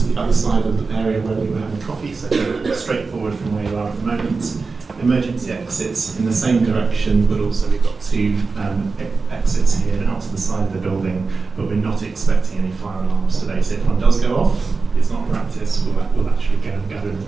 the other side of the area where we were having coffee, so straightforward from where you are at the moment. Emergency exits in the same direction, but also we've got two exits here out to the side of the building, but we're not expecting any fire alarms today, so if one does go off, it's not practice, we'll actually go and gather in the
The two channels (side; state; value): left; quieter; 4.3 dB